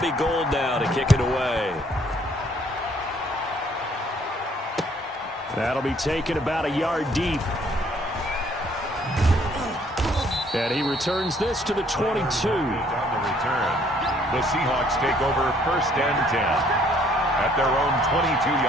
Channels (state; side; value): normal; both; correlation 0.63